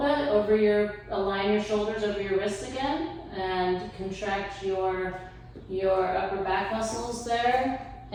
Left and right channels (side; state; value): both; identical; correlation 1.00